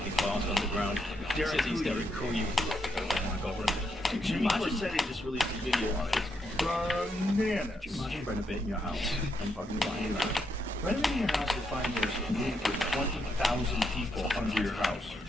the vast underground Derek cities, Coulier. Derek Coulier. Oh my god, what a Jimmy Corsetti just released a video on it. It's bananas. Could you imagine renovating your house and fucking finding that? Renovating your house to find there's room for 20,000 people under your house.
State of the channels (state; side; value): normal; both; correlation 0.79